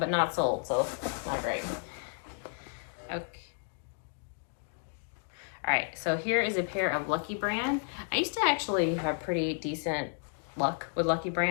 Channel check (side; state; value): right; silent; 56 dB below the other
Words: not sold, so not great. Okay. All right, so here is a pair of Lucky Brand. I used to actually have pretty decent luck with Lucky